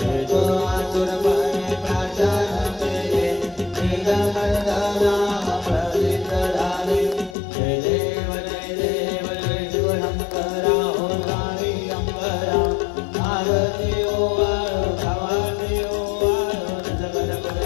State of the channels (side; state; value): right; drops out; at 7.4 s